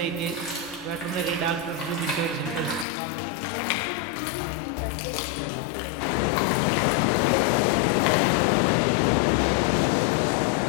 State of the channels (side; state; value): right; drops out; at 2.9 s